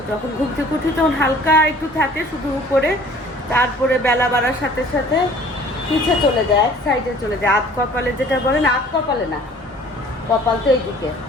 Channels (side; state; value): both; normal; correlation 0.51